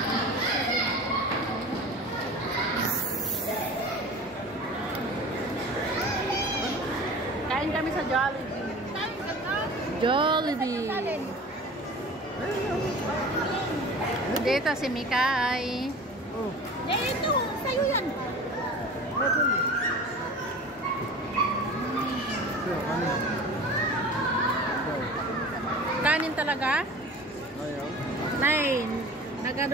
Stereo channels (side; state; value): both; normal; correlation 0.38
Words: Kain kami sa Jollibee. Jollibee. Dito si Mikay. Oh. Ito, sa'yo yan. Kanin talaga? Ayaw. Nay,